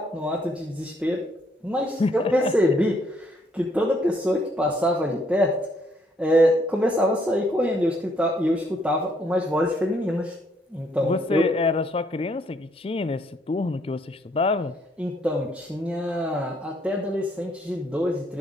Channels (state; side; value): normal; both; correlation 0.69